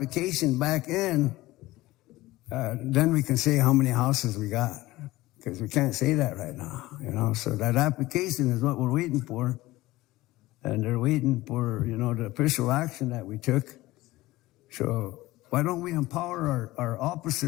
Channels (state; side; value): quieter; right; 18.2 dB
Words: back in, then we can say how many houses we got, because we can't say that right now, So that application is what we're waiting for, and they're waiting for, the official action that we took. So why don't we empower our